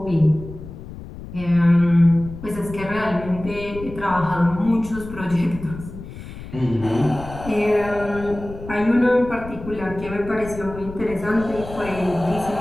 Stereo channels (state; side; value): noise; left; rumble, 13 dB below the sound